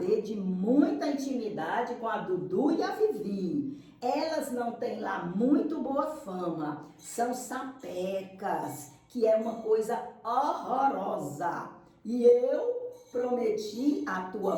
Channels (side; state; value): both; identical; correlation 1.00